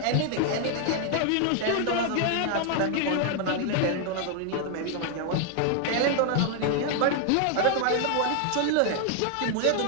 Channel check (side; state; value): both; different; correlation 0.00